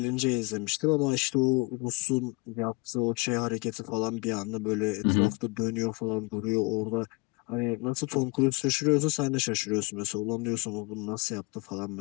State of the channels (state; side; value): quieter; right; 27.3 dB